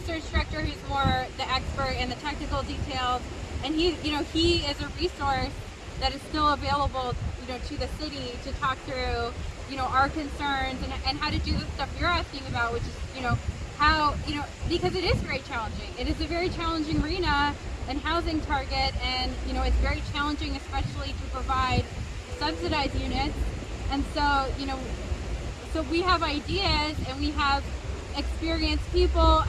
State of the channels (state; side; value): identical; both; correlation 1.00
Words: director who's more the expert in the technical details, and he is a resource that is still available to the city to talk through our concerns and how to do the stuff you're asking about, which is how because it is very challenging. It is a very challenging arena and housing target, and it's very challenging, especially to provide subsidized units. And so so we have ideas and we have experienced people.